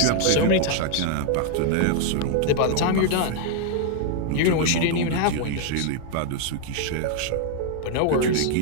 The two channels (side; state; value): both; different; correlation 0.00